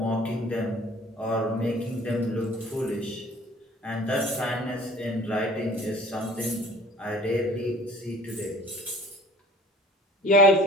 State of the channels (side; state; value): both; normal; correlation 0.48